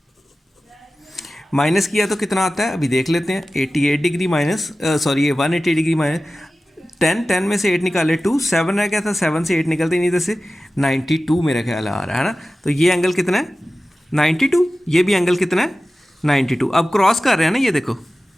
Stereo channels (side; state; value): both; normal; correlation 0.95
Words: माइनस किया तो कितना आता है अभी देख लेते हैं, 88 degree minus sorry 180 degree minus 10 में से 8 निकाले 2, 7 रह गया था, 7 से 8 निकलते नहीं, इधर से 92 मेरा ख्याल आ रहा है ना। तो ये एंगल कितना है 92, ये भी एंगल कितना है 92। अब क्रॉस कर रहे हैं ना ये देखो,